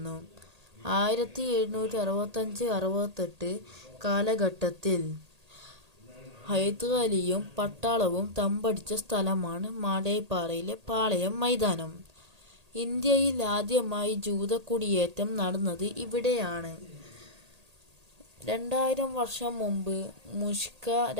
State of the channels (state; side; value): late; left; 1.8 ms